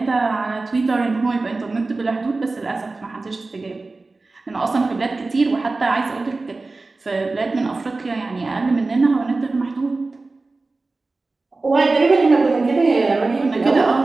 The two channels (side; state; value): left; quieter; 3.5 dB